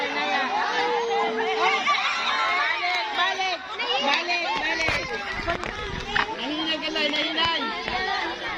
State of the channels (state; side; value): identical; both; correlation 1.00